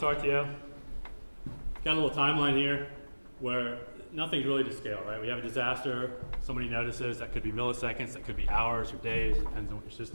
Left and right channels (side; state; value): both; inverted; correlation -1.00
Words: RTO? Got a little timeline here where nothing's really to scale, right? We have a disaster, somebody notices, that could be milliseconds, that could be hours or days, depends on what your